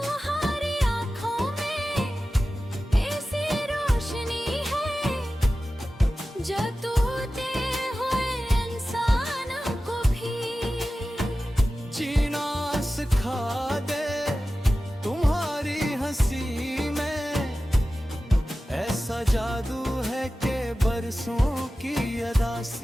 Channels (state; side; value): normal; both; correlation 0.95